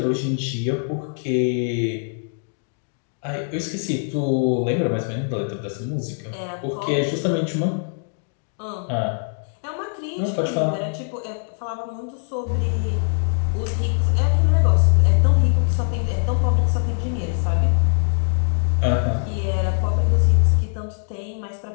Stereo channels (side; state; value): right; silent; 64 dB below the other